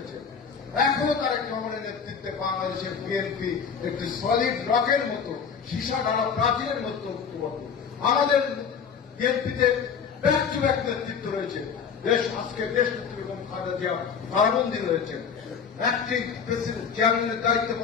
এখনো তারেক রহমানের নেতৃত্বে বাংলাদেশের বিএনপি একটি সলিড রকের মতো, সীসা ঢালা প্রাচীরের মতো ঐক্যবদ্ধ। আমাদের বিএনপিতে ব্যাক টু ব্যাক নেতৃত্ব রয়েছে। আজকে দেশনেত্রী এবং খালেদা জিয়া কারাবন্দী রয়েছেন, অ্যাক্টিং প্রেসিডেন্ট চেয়ারম্যানের দায়িত্ব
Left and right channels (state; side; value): quieter; right; 6.6 dB